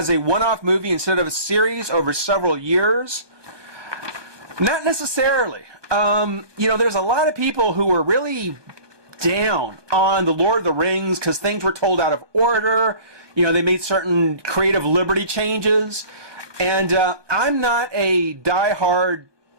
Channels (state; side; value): late; left; 1.2 ms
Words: a one-off movie instead of a series over several years? Not necessarily. There's a lot of people who were really down on The Lord of the Rings because things were told out of order. They made certain creative liberty changes. And I'm not a diehard